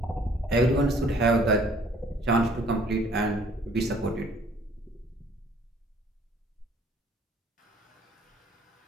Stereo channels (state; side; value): normal; both; correlation 0.58